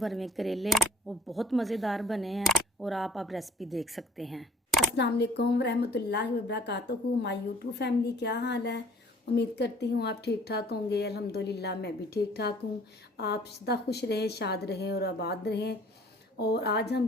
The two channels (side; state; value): both; normal; correlation 0.55